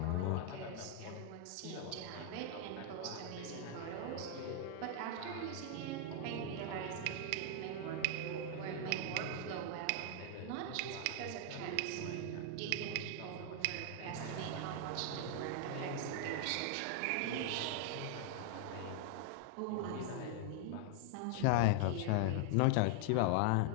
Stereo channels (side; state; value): both; different; correlation 0.00